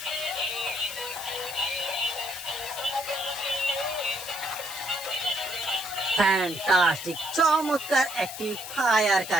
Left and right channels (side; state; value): left; noise; hiss, 10 dB below the sound